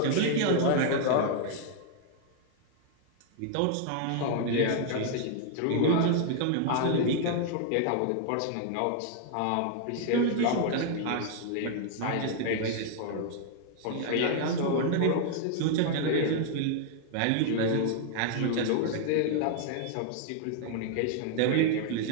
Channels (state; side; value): different; both; correlation 0.00